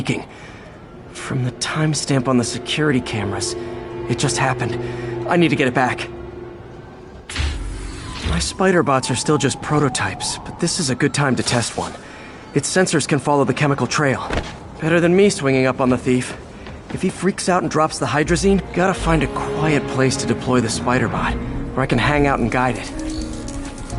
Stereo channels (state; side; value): identical; both; correlation 1.00